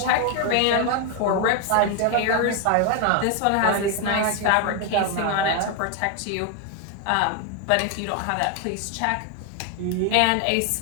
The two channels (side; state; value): both; different; correlation 0.01